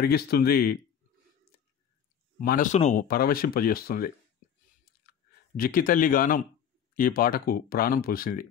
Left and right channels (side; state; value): right; quieter; 8.5 dB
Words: మనసును పరవశింపజేస్తుంది. జిక్కితల్లి గానం ఈ పాటకు ప్రాణం పోసింది.